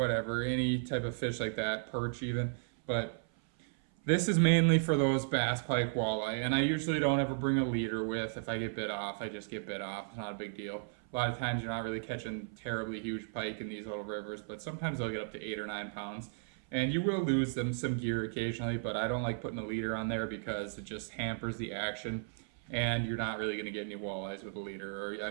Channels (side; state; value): left; silent; 55 dB below the other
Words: any type of fish like that, perch even. But this is mainly for those bass, pike, walleye, and I usually don't ever bring a leader with. If I get bit off, I just get bit off. It's not a big deal. A lot of times you're not really catching terribly huge pike in these little rivers, but sometimes they'll get up to 8 or 9 pounds. And you will lose some gear occasionally, but I don't like putting a leader on there because it just hampers the action, and you're not really going to get any walleyes with a leader. Or, I